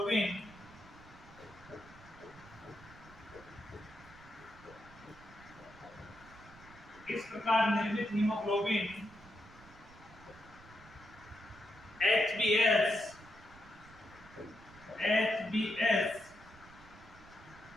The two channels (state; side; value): noise; right; rumble, 21 dB below the sound